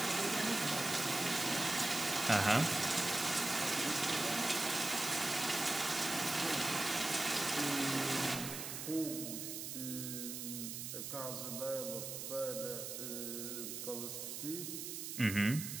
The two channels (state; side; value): noise; right; hiss, 6 dB below the sound